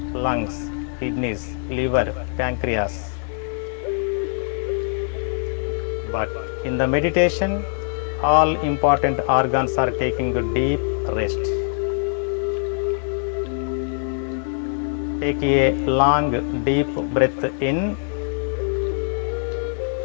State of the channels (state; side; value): silent; right; digital silence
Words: lungs, kidneys, liver, pancreas. But in the meditation, all important organs are taking a deep rest. Take a long, deep breath in.